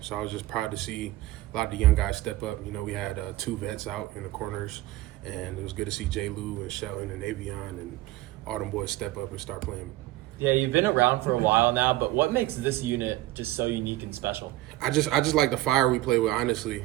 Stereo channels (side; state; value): left; quieter; 16.6 dB